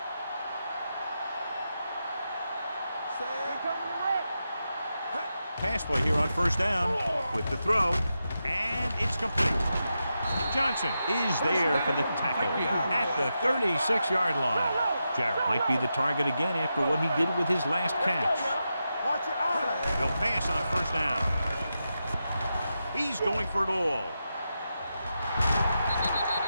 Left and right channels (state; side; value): inverted; both; correlation -0.88